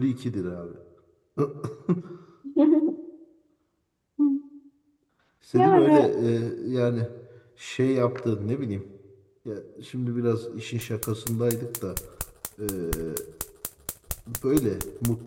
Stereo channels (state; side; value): identical; both; correlation 1.00